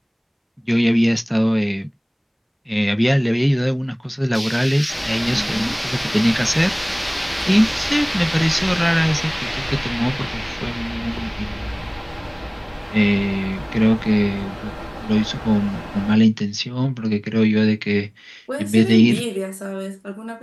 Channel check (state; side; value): identical; both; correlation 1.00